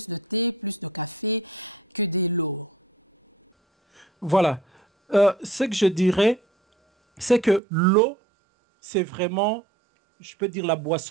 de thé, plus de café que de l'eau? Voilà. Ce que je dirais, c'est que l'eau, c'est vraiment, je peux dire, la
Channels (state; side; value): drops out; left; at 7.6 s